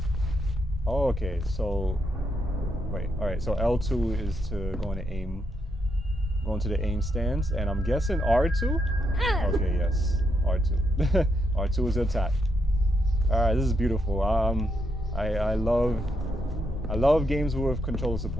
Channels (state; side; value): normal; both; correlation 0.79